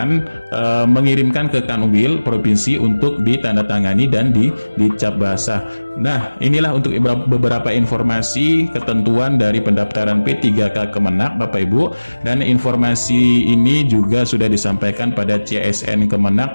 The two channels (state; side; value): inverted; both; correlation -1.00